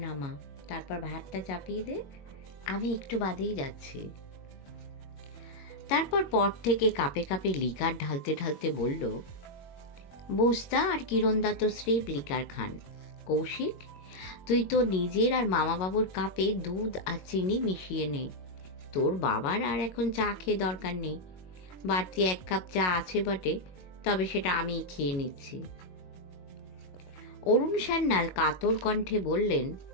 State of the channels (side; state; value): right; late; 22 ms